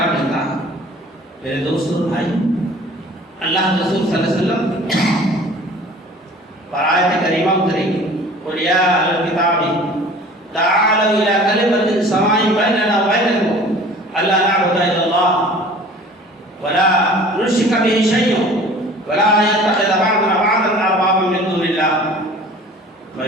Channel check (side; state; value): both; normal; correlation 0.46